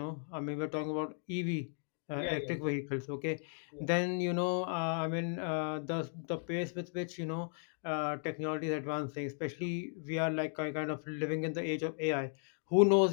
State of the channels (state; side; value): silent; right; 54 dB below the other